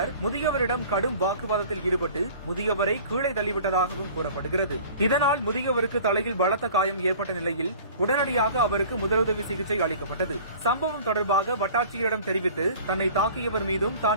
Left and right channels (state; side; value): inverted; both; correlation -0.46